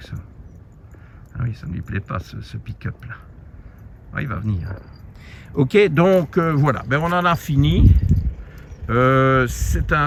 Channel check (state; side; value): identical; both; correlation 1.00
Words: Ah oui, ça ne lui plaît pas ce pick-up là. Ah, il va venir. Ok, donc voilà, ben, on en a fini. C'est